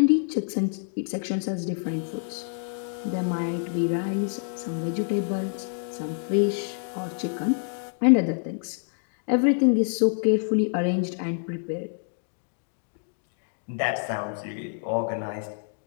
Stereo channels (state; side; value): silent; right; digital silence